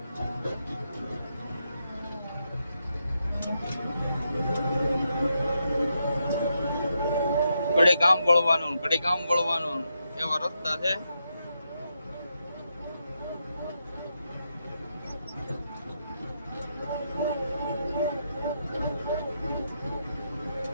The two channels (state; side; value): inverted; both; correlation -0.83